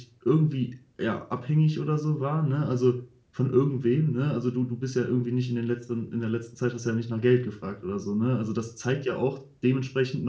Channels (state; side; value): identical; both; correlation 1.00